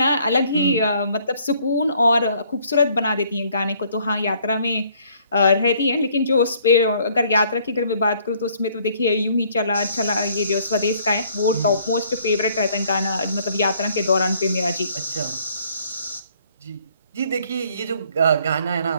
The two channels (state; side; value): inverted; both; correlation -0.62